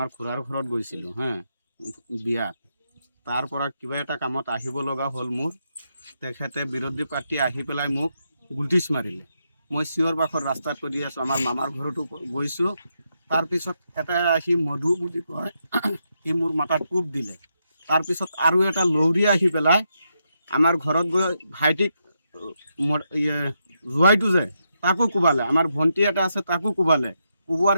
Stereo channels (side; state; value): both; inverted; correlation -0.82